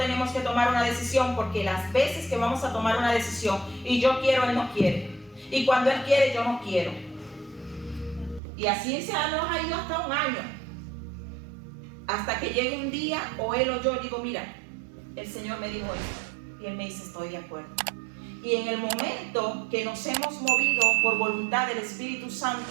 que tomar una decisión, porque las veces que vamos a tomar una decisión y yo quiero, Él no quiere, y cuando Él quiere, yo no quiero, y así se nos ha ido hasta un año, hasta que llegue un día o Él o yo digo, mira, el Señor me dijo esto, y Él me dice, estoy de acuerdo. Y en el momento que nos hemos movido por voluntad del Espíritu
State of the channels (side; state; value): left; drops out; at 8.4 s